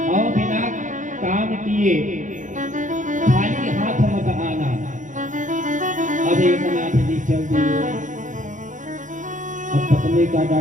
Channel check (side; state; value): left; late; 0.37 ms